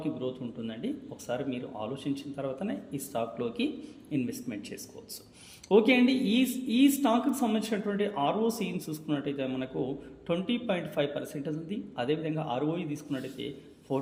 గ్రోత్ ఉంటుందండి. ఒకసారి మీరు ఆలోచించిన తర్వాతనే ఈ స్టాక్లోకి ఇన్వెస్ట్మెంట్ చేసుకోవచ్చు. ఓకే అండి, ఈ స్టాక్కి సంబంధించినటువంటి ఆర్ఓసీని చూసుకున్నట్టయితే మనకు 20.5% ఉంది. అదేవిధంగా ఆర్ఓఈ తీసుకున్నట్టయితే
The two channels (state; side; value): identical; both; correlation 1.00